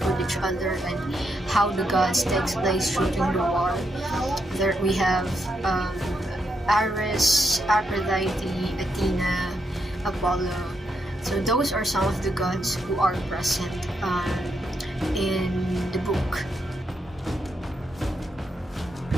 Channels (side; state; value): both; normal; correlation 0.80